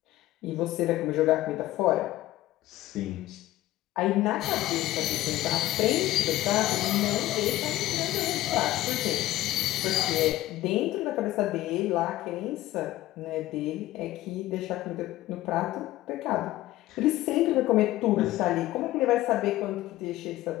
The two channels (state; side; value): quieter; right; 15.8 dB